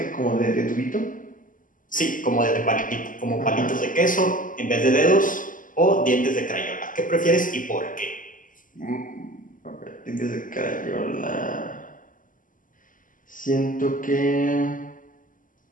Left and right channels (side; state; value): right; late; 0.38 ms